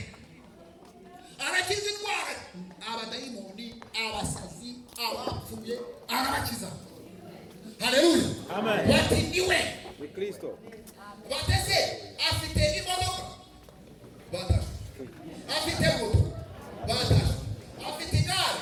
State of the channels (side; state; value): both; identical; correlation 1.00